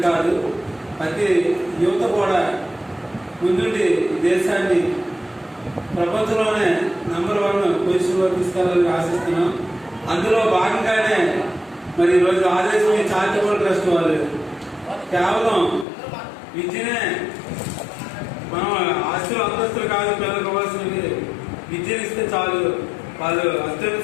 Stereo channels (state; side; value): drops out; right; at 15.9 s